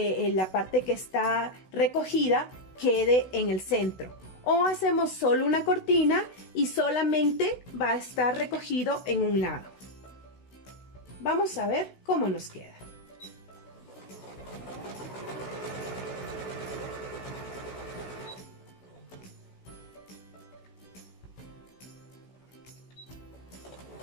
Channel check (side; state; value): right; late; 16 ms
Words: parte que está recogida quede en el centro. O hacemos solo una cortina y solamente va a estar recogido en un lado. Vamos a ver cómo nos queda.